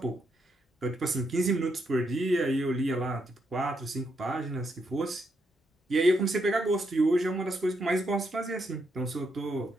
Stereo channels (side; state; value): both; normal; correlation 0.79